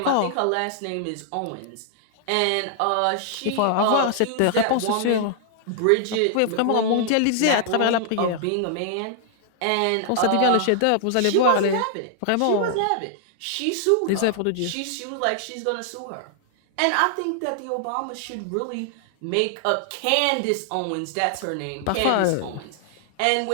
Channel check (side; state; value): both; different; correlation -0.01